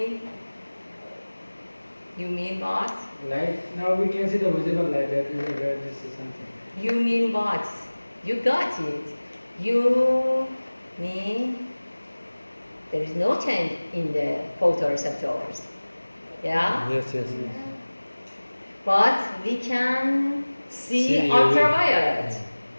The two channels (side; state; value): both; inverted; correlation -1.00